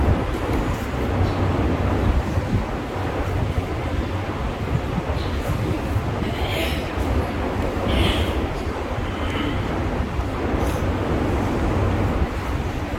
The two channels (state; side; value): identical; both; correlation 1.00